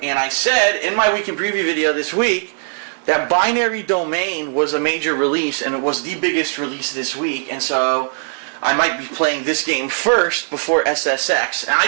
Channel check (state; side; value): silent; left; digital silence